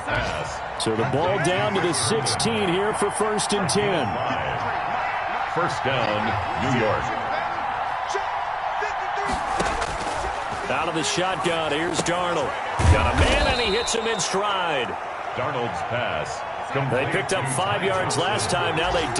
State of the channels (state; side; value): identical; both; correlation 1.00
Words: So the ball down to the 16 here for 1st and 10. 1st down, New York. Out of the shotgun, here's Darnold. Got a man, and he hits him in stride. Darnold's pass. They picked up 5 yards last time. Now they